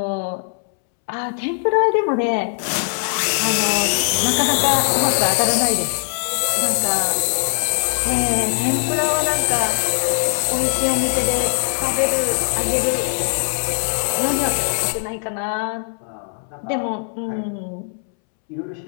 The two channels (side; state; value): right; silent; 66 dB below the other